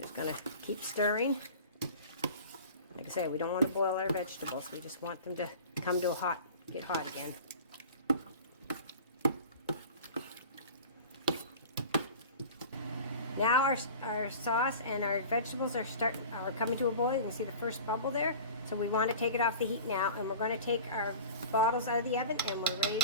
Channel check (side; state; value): both; inverted; correlation -0.39